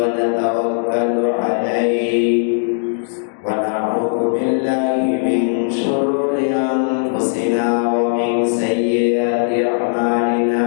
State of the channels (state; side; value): silent; right; digital silence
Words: natawakkalu alayhi wa na'udzu billahi min shururi anfusina wa min sayyiati